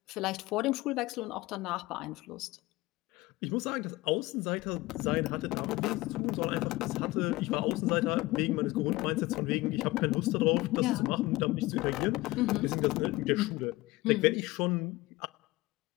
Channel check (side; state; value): right; quieter; 19.7 dB